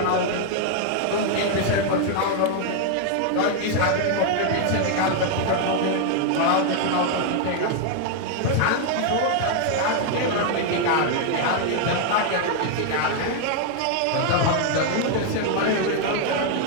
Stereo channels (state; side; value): different; both; correlation 0.00